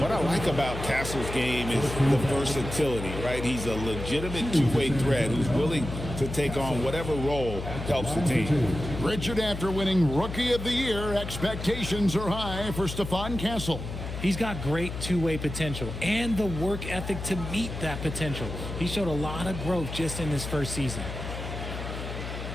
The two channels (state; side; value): noise; left; hum, 7 dB below the sound